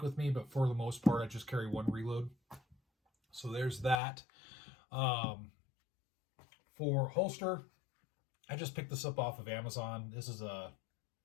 with me, but for the most part, I just carry one reload. So there's that. For holster, I just picked this up off of Amazon. This is a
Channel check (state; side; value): drops out; right; at 4.0 s